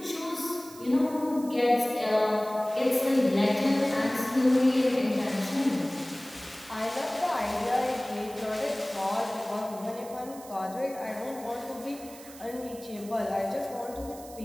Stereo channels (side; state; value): right; noise; hiss, 18 dB below the sound